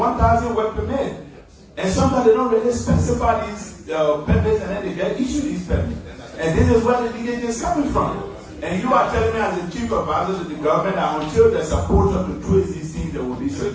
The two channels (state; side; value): identical; both; correlation 1.00